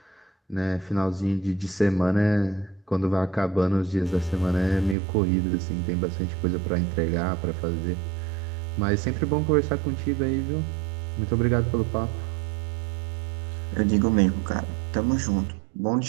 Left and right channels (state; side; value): drops out; left; at 5.0 s